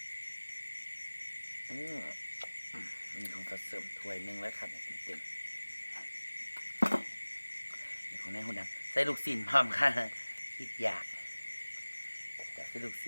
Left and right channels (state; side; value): inverted; both; correlation -1.00